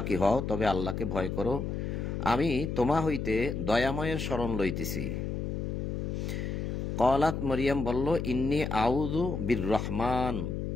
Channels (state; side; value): noise; left; hum, 3 dB below the sound